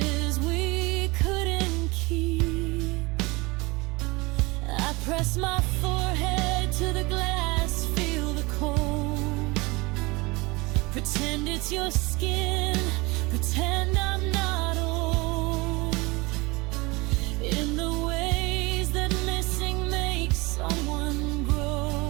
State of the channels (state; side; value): quieter; left; 24.4 dB